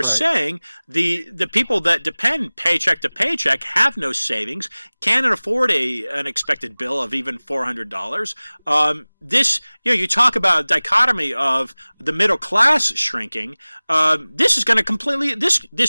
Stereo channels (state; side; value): inverted; both; correlation -1.00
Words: saying, the people that depend paycheck to paycheck have no savings, can't afford an expected bill of even $400. This, you talk about a dichotomy of the middle class shrinking. This is going to completely.